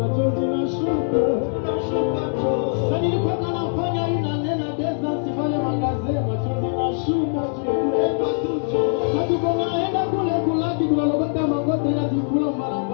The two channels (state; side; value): silent; right; digital silence